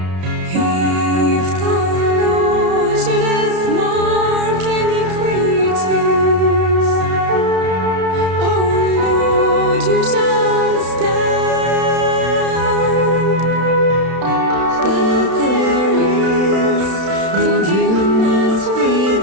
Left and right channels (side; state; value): left; late; 32 ms